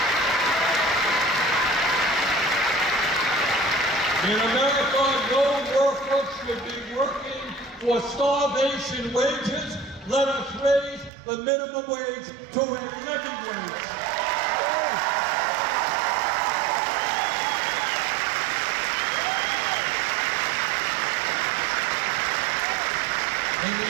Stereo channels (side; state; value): left; drops out; at 11.1 s